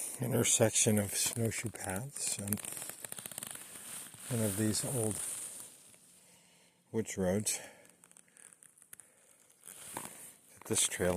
Intersection of snowshoe paths and one of these old woods roads that this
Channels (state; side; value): identical; both; correlation 1.00